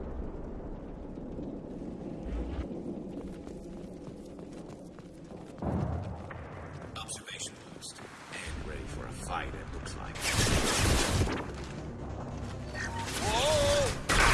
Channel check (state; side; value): identical; both; correlation 1.00